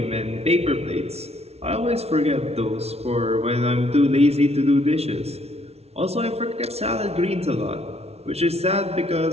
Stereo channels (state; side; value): late; left; 0.31 ms